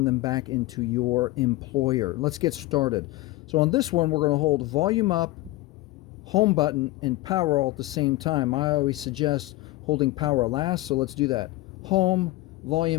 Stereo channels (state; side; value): quieter; right; 18.4 dB